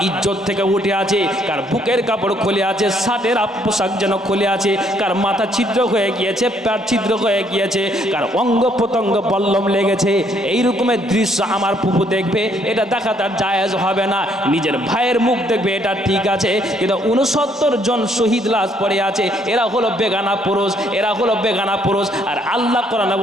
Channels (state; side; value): normal; both; correlation 0.68